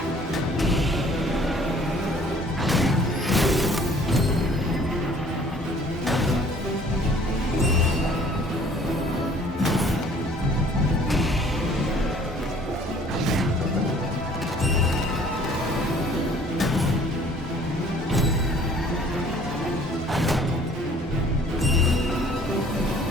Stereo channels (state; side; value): normal; both; correlation 0.55